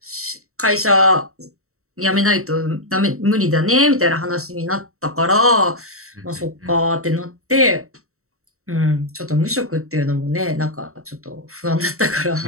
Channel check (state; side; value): late; left; 0.64 ms